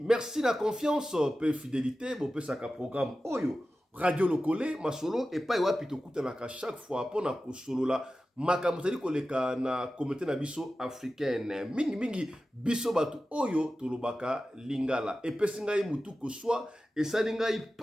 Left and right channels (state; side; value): normal; both; correlation 0.94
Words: na confiance pe fidélité bo pe saka programme oyo radio lokole masolo et pas wapi to kutanaka chaque fois pona ko solola makambo tali koleka na communauté na biso africaine mingi biso batu oyo tolobaka lingala et pe singa mutu ko soit et salinga